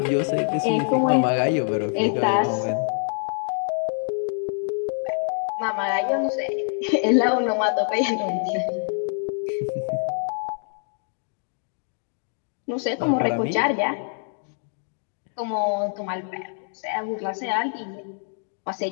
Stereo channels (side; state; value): right; silent; 59 dB below the other